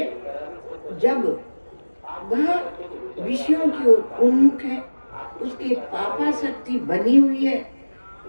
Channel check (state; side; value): inverted; both; correlation -1.00